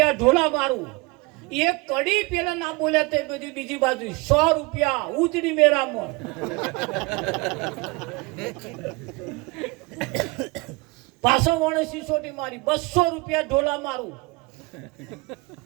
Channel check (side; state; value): left; quieter; 25.7 dB